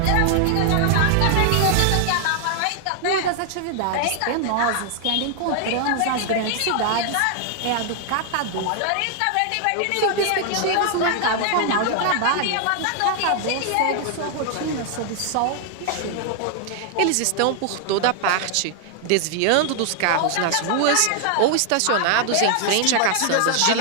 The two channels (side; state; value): both; different; correlation 0.00